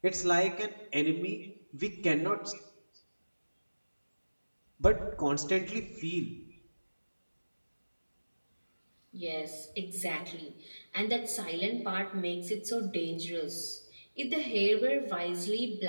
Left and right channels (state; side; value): inverted; both; correlation -1.00